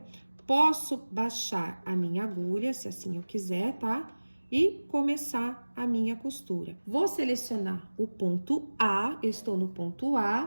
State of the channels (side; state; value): both; inverted; correlation -1.00